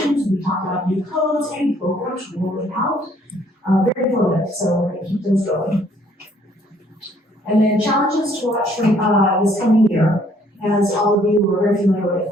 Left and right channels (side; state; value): both; normal; correlation 0.63